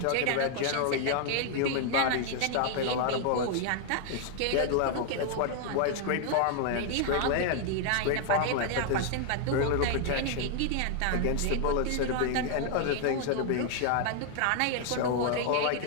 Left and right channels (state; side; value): different; both; correlation 0.00